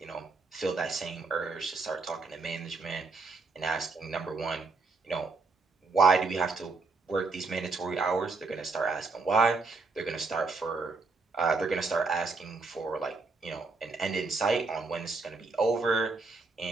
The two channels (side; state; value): left; quieter; 4.0 dB